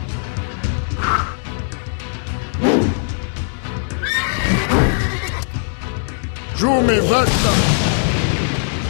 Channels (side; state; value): right; silent; digital silence